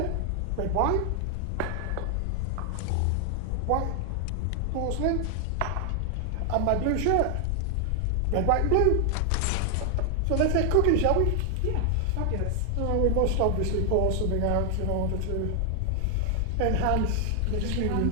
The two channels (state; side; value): different; both; correlation 0.00